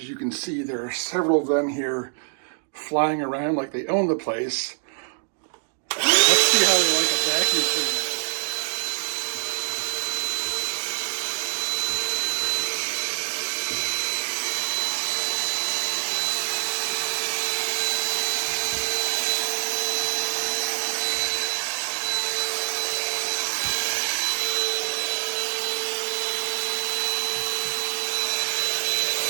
you can see, there are several of them here flying around like they own the place. Let's see how they like a vacuum cleaner.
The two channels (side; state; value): left; silent; digital silence